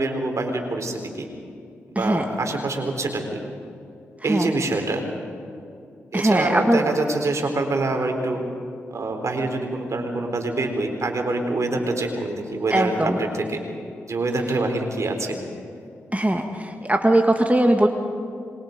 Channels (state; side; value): normal; both; correlation 0.84